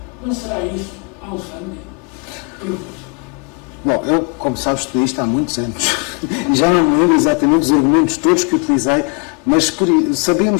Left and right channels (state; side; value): quieter; right; 35.5 dB